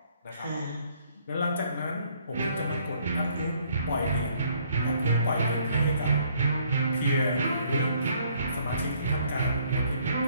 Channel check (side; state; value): both; inverted; correlation -0.65